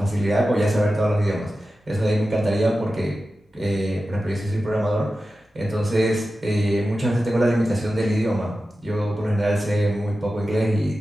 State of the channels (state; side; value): normal; both; correlation 0.93